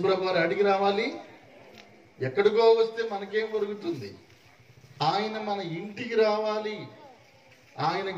వారు అడిగి రావాలి. ఎక్కడికో వస్తే మనకేం దొరుకుతుంది? ఆయన మన ఇంటికి రావాలి. ఆయన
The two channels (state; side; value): identical; both; correlation 1.00